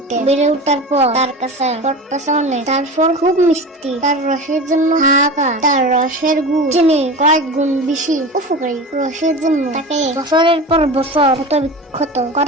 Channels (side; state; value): both; normal; correlation 0.30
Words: বেড়ে উঠার পর তার কাছে প্রত্যাশা অনেক। তারপর খুব মিষ্টি, তার রসের জন্য হাহাকার, তার রসের গুণ চিনি কয়েক গুণ বেশি উপকারী। রসের জন্য তাকে বছরের পর বছর ক্ষত